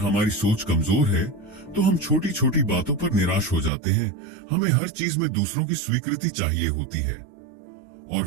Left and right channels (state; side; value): drops out; left; at 3.7 s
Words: सोच कमजोर है तो हम छोटी छोटी बातों पर निराश हो जाते हैं। हमें हर चीज में दूसरों की स्वीकृति चाहिए होती है और